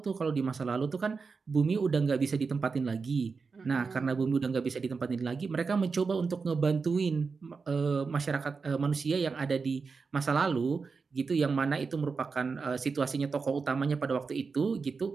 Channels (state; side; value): quieter; left; 4.8 dB